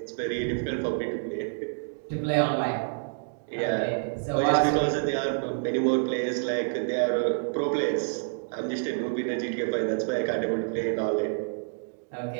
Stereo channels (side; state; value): left; silent; digital silence